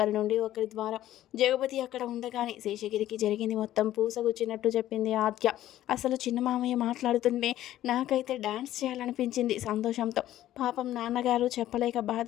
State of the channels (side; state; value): right; quieter; 13.4 dB